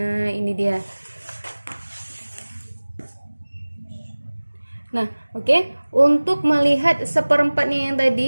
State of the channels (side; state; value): both; inverted; correlation -1.00